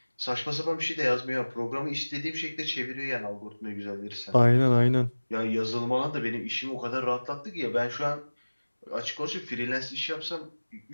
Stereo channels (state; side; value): inverted; both; correlation -1.00